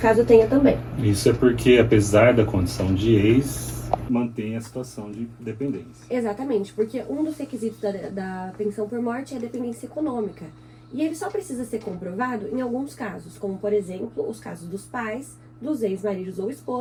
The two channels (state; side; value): identical; both; correlation 1.00